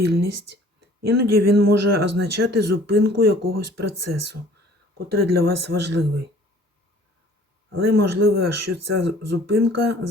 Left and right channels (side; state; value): both; normal; correlation 0.53